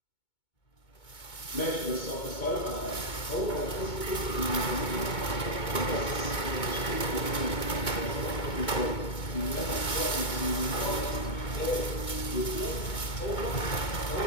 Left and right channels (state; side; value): late; right; 2.2 ms